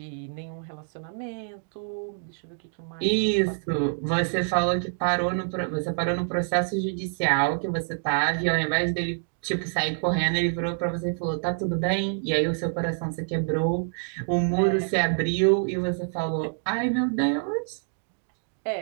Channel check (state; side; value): silent; left; digital silence